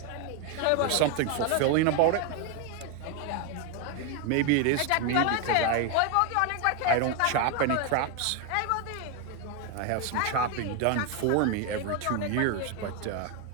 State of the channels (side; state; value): both; different; correlation 0.01